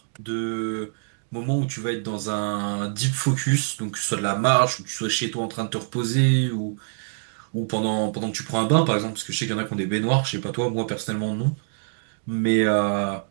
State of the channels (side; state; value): left; silent; digital silence